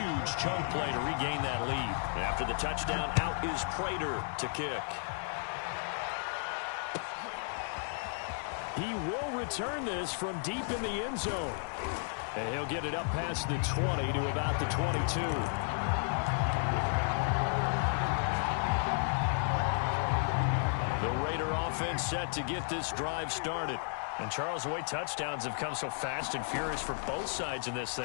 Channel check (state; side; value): silent; right; 55 dB below the other